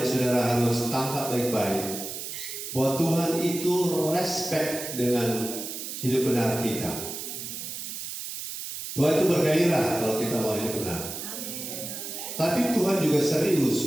saudara harus tangkap baik-baik, bahwa Tuhan itu respect dengan hidup benar kita. Tuhan itu bergairah kalau kita mau hidup benar. Tapi Tuhan juga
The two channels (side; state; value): right; noise; hiss, 7 dB below the sound